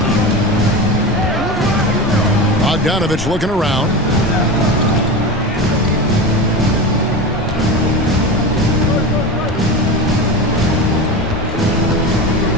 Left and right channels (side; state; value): both; normal; correlation 0.25